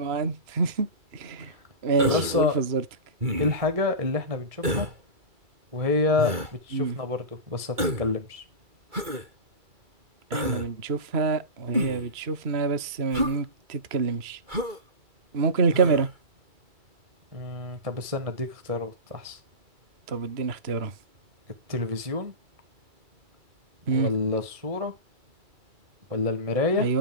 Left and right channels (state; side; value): late; left; 2.3 ms